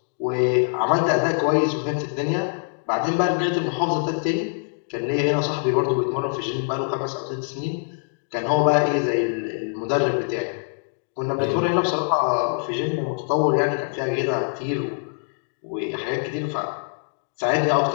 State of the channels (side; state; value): right; silent; digital silence